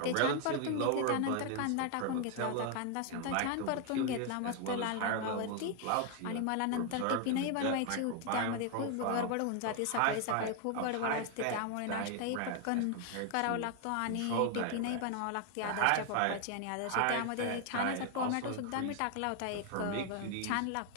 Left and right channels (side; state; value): both; different; correlation 0.00